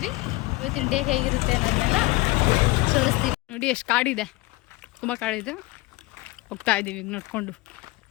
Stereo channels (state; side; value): quieter; right; 21.2 dB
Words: ಇವತ್ತಿನ ಡೇ ಹೇಗಿರುತ್ತೆ ಅನ್ನೋದನ್ನೆಲ್ಲ ತೋರಿಸ್ತೀವಿ. ನೋಡಿ ಎಷ್ಟು ಕಾಡಿದೆ, ತುಂಬ ಕಾಡಿದೆ. ಹೋಗ್ತಾ ಇದ್ದೀವಿ ಈಗ ನೋಡ್ಕೊಂಡು.